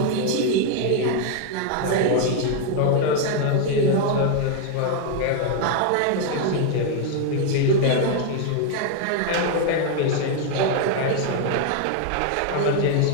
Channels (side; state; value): both; different; correlation 0.01